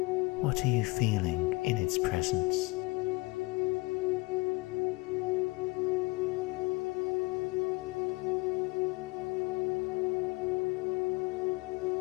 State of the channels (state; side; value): quieter; right; 24.9 dB